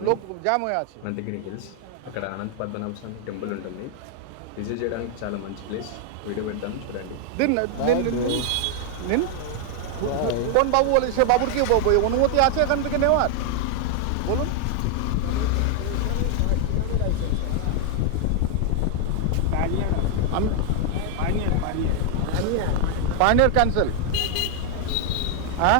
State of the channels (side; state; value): both; different; correlation 0.00